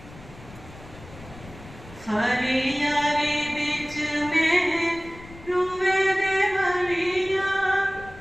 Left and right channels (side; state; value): left; noise; rumble, 18 dB below the sound